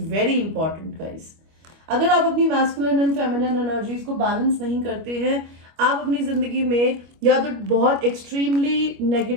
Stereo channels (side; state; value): left; late; 25 ms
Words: very important guys. अगर आप अपनी मैस्कुलिन एंड फेमिनिन एनर्जीज को बैलेंस नहीं करते हैं, आप अपनी जिंदगी में या तो बहुत extremely